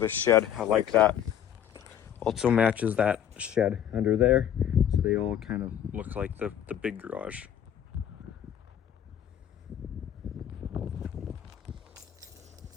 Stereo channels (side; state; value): right; quieter; 9.8 dB